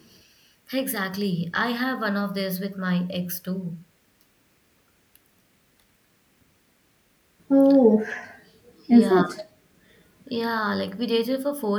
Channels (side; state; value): both; identical; correlation 1.00